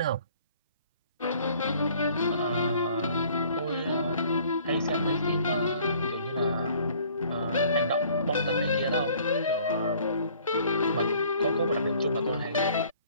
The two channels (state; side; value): inverted; both; correlation -0.56